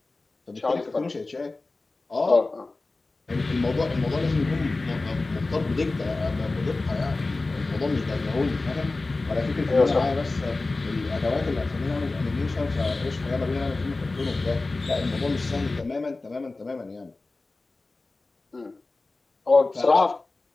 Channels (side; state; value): right; quieter; 3.3 dB